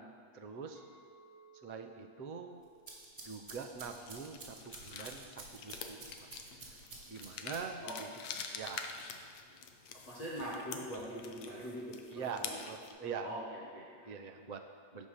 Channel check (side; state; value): right; late; 8.4 ms